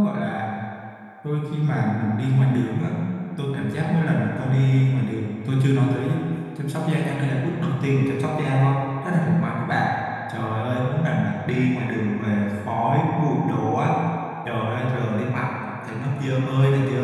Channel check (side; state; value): both; identical; correlation 1.00